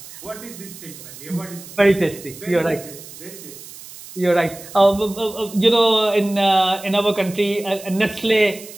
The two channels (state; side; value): noise; right; hiss, 16 dB below the sound